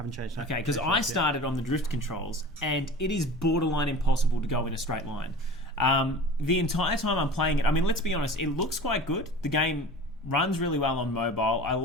changed. Okay, because I started on the drift controls, and it is borderline impossible to go in a straight line. The entire time I'm playing it, I mean, let's be honest, it looks quite good. The game runs really well on mobile. I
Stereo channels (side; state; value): both; normal; correlation 0.38